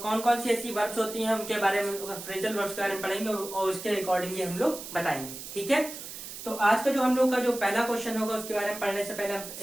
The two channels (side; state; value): right; noise; hiss, 10 dB below the sound